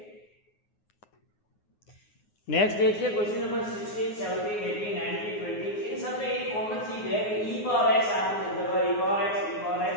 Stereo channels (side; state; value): right; late; 9.6 ms